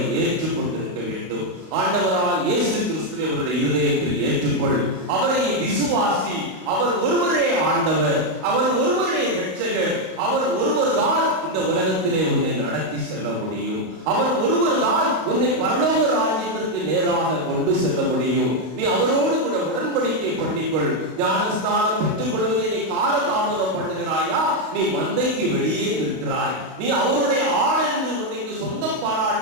ஏற்றுக்கொண்டிருக்க வேண்டும். ஆண்டவரால் இயேசு கிறிஸ்துவை அவருடைய இதயத்தில் ஏற்றுக்கொள், அவரை விசுவாசி. அவர் ஒருவரே ஆண்டவர், அவர் ஒருவரே இரட்சகர், அவர் ஒருவர் தான் இந்த உலகத்திலே உன்னை நடத்தி செல்ல முடியும். அவர் ஒருவர் தான் உன்னை பரலோக ராஜ்யத்திற்கு நேராக கொண்டு செல்ல முடியும். நீ அவரோடு கூட உடன்படிக்கை பண்ணிக்கொள். ஞானஸ்நானம் பெற்றுக் கொள்வதை நீ காலதாமதம் பண்ணுகிறாயா? நீ மந்தைக்கு வெளியே நிற்கிறாய். நீ அவருடைய ஆடு என்று உன்னைக்கு சொந்தம்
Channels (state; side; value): late; left; 32 ms